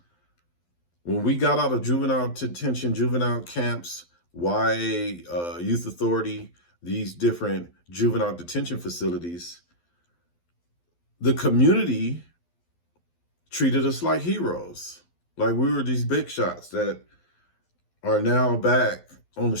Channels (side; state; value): right; late; 12 ms